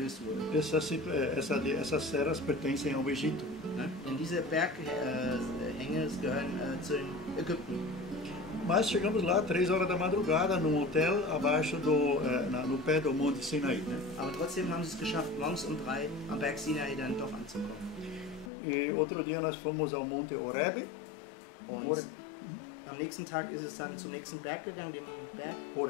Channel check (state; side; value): drops out; right; at 18.5 s